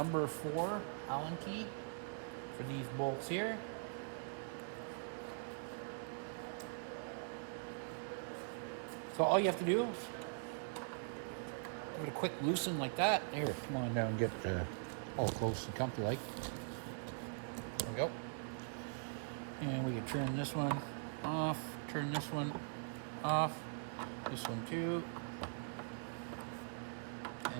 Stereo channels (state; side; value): silent; left; digital silence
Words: 4 Allen key for these bolts here. So all you have to do, give it a quick loosen like that. Here, come on down and get all close and comfy like. There we go. And we can turn this one off, turn this one off, this one too,